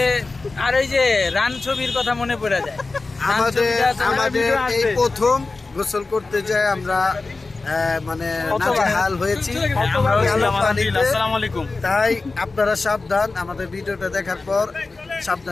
আর ওই যে রান ছবির কথা মনে পড়ে যায়। আমাদের এই প্রথম গোসল করতে যাই আমরা, মানে নাজেহাল হয়েছি পানিতে। তাই আপনারা সাবধান, আমাদের ভিডিওটা দেখার পর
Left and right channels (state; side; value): quieter; right; 3.7 dB